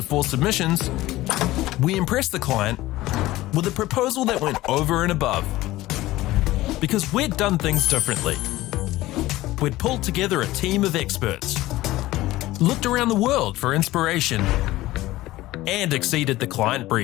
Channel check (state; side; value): quieter; right; 17.2 dB